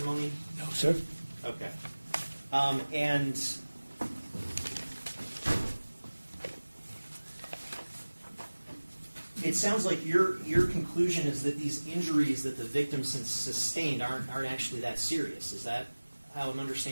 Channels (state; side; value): inverted; both; correlation -1.00